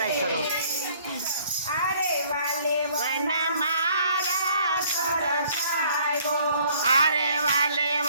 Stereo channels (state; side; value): inverted; both; correlation -0.59